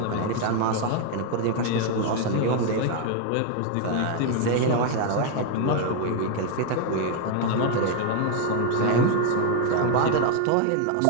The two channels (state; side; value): different; both; correlation 0.01